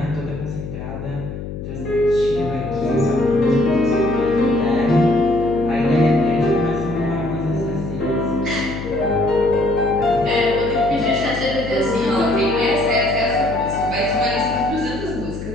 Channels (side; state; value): left; noise; hum, 8 dB below the sound